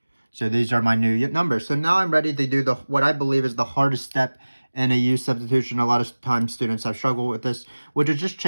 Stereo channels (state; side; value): inverted; both; correlation -1.00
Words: So these are my new numbers. So now I'm ready to do what I believe is the hardest step in a u substitution. A lot of times students have struggled with this, which is just